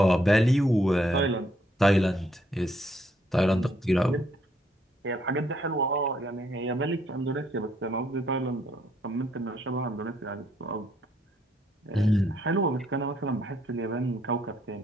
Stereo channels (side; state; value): both; normal; correlation 0.70